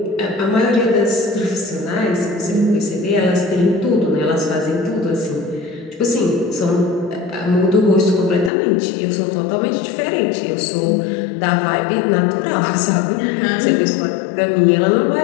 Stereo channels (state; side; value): drops out; right; at 8.5 s